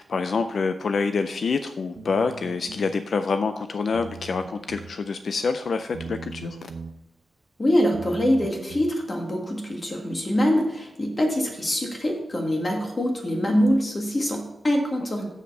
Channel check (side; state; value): both; normal; correlation 0.92